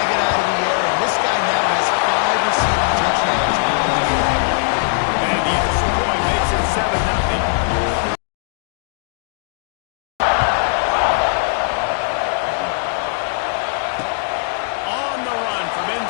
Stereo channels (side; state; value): right; silent; digital silence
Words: it out of the air, and this guy now has 5 receiving touchdowns on the year. And the extra point makes it 7-0. On the run from